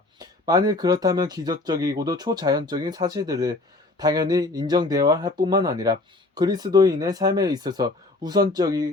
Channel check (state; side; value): quieter; right; 3.0 dB